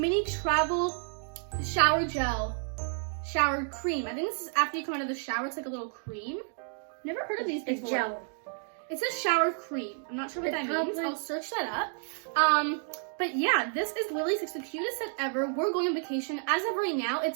travel shower gel, shower cream. I think this is after you come out of the shower. It's like a little cream. Never heard of these before. It's gel. It says shower cream. I'm not sure what It's that means. probably- I'll search that up. But yeah, this is literally it's the cutest set ever. We're going on vacation. As of right now,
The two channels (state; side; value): silent; left; 57 dB below the other